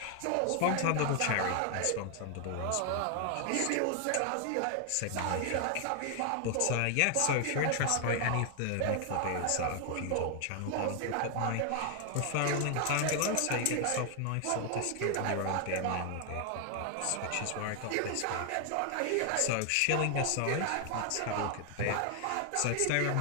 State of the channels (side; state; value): both; different; correlation 0.00